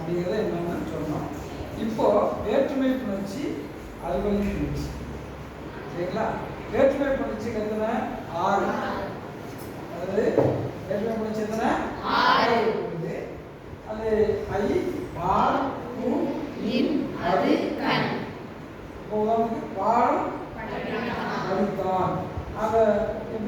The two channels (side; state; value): both; identical; correlation 1.00